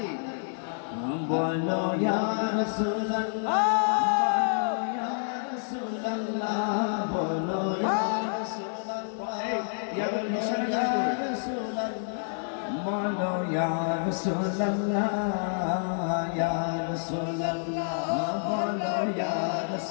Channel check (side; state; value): right; silent; digital silence